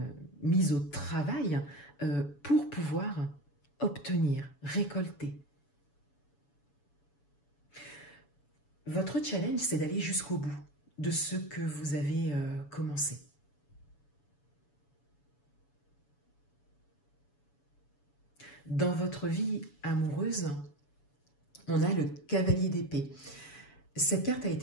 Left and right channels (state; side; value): late; right; 7.0 ms